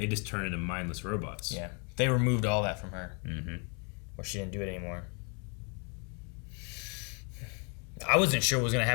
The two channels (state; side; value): quieter; right; 35.9 dB